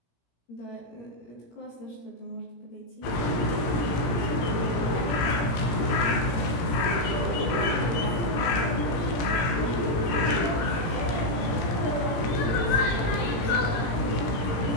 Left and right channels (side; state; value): right; late; 18 ms